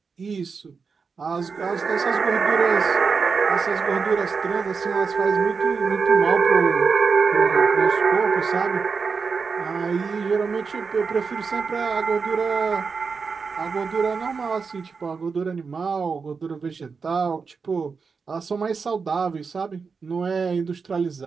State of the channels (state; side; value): quieter; left; 5.2 dB